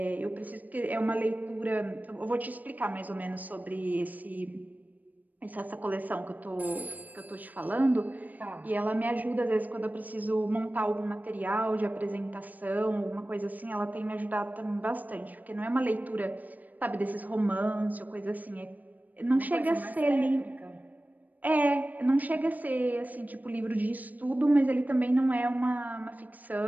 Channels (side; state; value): left; late; 0.082 ms